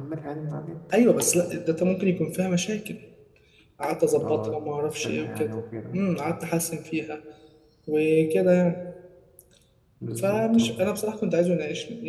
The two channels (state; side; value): identical; both; correlation 1.00